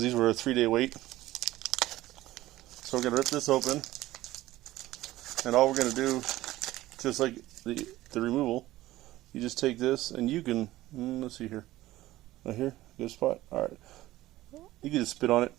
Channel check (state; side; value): quieter; left; 16.3 dB